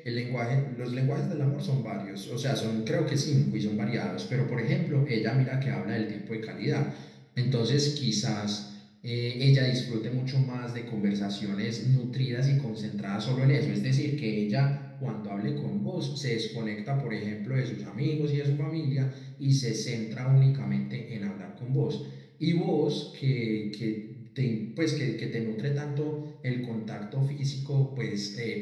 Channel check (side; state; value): both; identical; correlation 1.00